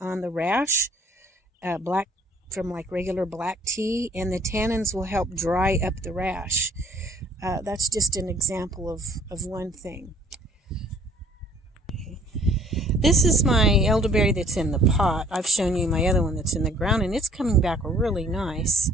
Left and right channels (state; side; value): normal; both; correlation 0.57